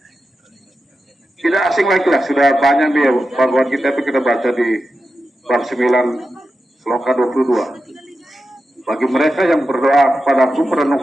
tidak asing lagi lah, sudah banyak nih Bhagavad Gita itu kita baca di bab 9 sloka 22. Bagi mereka yang berdoa kepadaku,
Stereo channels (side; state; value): both; normal; correlation 0.90